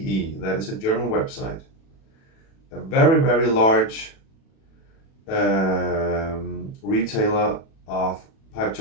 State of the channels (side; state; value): right; late; 37 ms